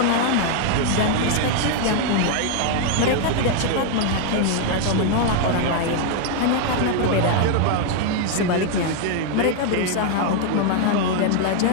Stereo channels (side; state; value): both; different; correlation 0.00